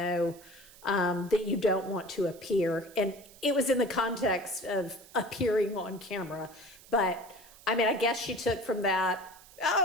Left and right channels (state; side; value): noise; right; hiss, 22 dB below the sound